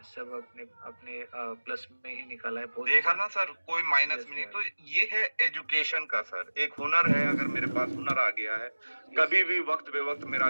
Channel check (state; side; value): inverted; both; correlation -1.00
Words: सब अपने अपने प्लस में ही निकाला है। बहुत देखा अच्छा। ना सर, कोई माइनस में नहीं। तो ये है एजुकेशन का सर, एक हुनर है। अगर मेरे पास हुनर आ गया है, कभी भी वक्त बेवक्त मेरा